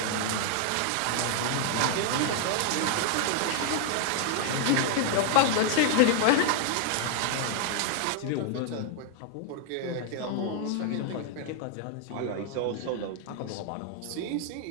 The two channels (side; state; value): both; different; correlation 0.00